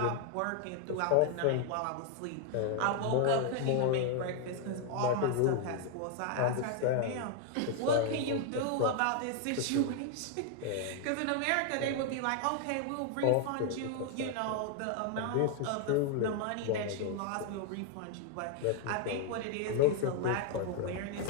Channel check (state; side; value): different; both; correlation 0.00